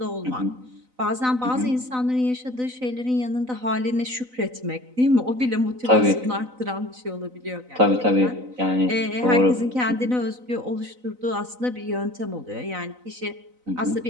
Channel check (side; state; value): left; late; 4.0 ms